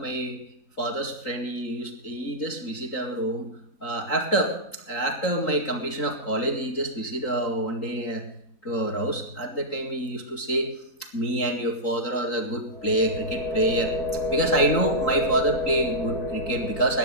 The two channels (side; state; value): right; late; 3.8 ms